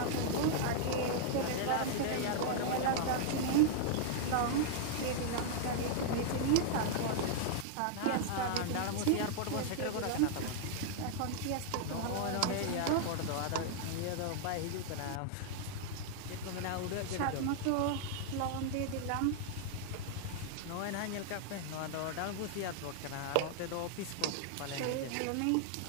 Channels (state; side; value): different; both; correlation -0.01